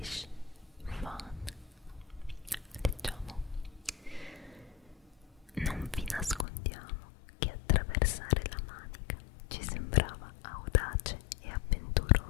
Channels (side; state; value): right; drops out; at 6.5 s